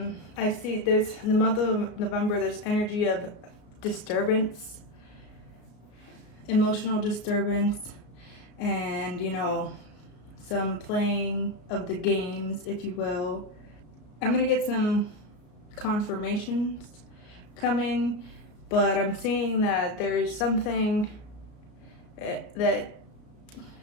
see there's, in the month of November, there's energy of disturbance emotional disturbance and, you know, some playing of the games, if you will. I'm gonna get some confirmations coming, but I'm seeing that there is something that,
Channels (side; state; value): right; late; 33 ms